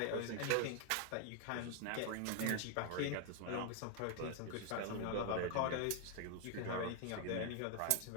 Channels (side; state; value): both; different; correlation 0.00